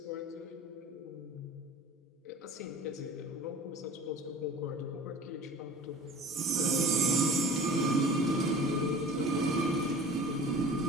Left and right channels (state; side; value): normal; both; correlation 0.42